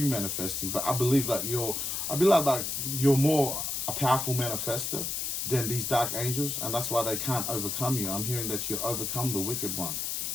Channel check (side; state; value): left; noise; hiss, 2 dB below the sound